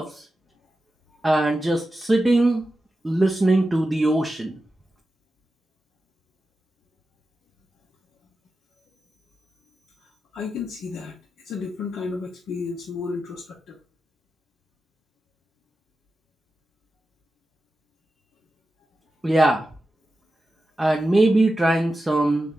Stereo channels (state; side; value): normal; both; correlation 0.91